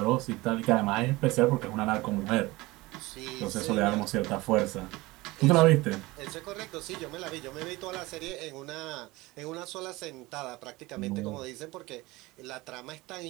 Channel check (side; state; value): left; quieter; 21.1 dB